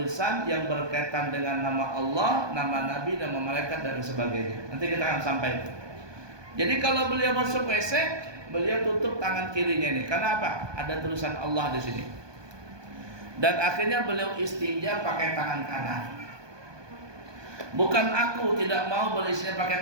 yang berkaitan dengan nama Allah, nama Nabi, nama malaikat dan sebagainya. Nanti kita akan sampai. Jadi kalau beliau masuk WC, beliau tutup tangan kirinya ini. Karena apa? Ada tulisan Allah di sini. Dan akhirnya beliau istinja pakai tangan kanan. Bukan aku tidak mau beristinja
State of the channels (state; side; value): late; left; 1.2 ms